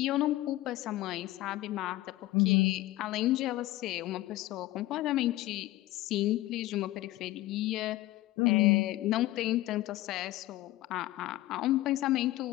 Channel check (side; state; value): right; quieter; 16.7 dB